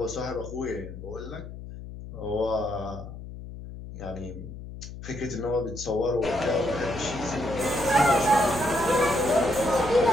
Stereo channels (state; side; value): noise; left; hum, 12 dB below the sound